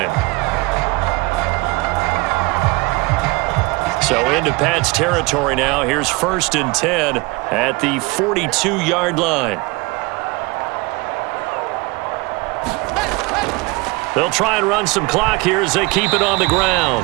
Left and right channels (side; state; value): left; quieter; 24.6 dB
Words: So into Pat's territory now. Here's 1st and 10 at the 42-yard line. They'll try and run some clock here as they keep it on the